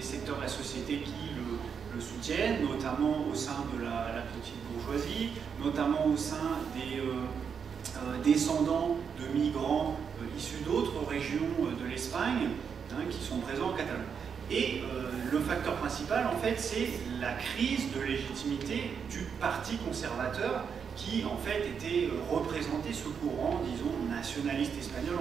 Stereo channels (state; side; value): quieter; left; 6.7 dB